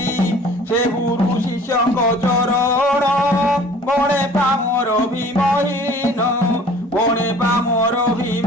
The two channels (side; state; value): both; normal; correlation 0.49